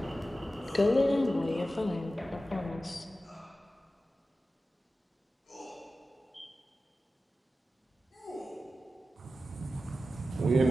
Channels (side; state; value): both; normal; correlation 0.93